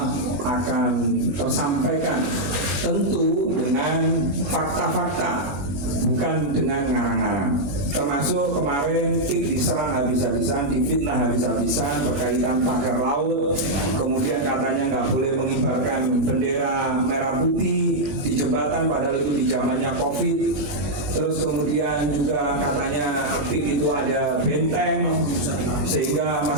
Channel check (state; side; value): late; left; 21 ms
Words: akan tersampaikan tentu dengan fakta-fakta, bukan dengan ngarang-ngarang. Termasuk kemarin PIK diserang habis-habisan, difitnah habis-habisan berkaitan pagar laut, kemudian katanya nggak boleh mengibarkan bendera merah putih di jembatan padahal itu di zamannya COVID. Terus kemudian juga katanya PIK itu ada benteng sehingga